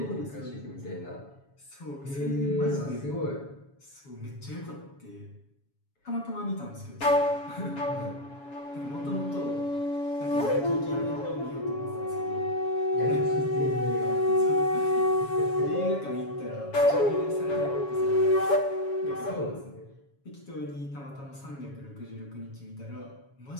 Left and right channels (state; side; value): late; right; 7.2 ms